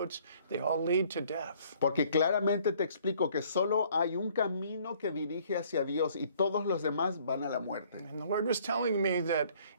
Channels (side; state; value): both; inverted; correlation -0.59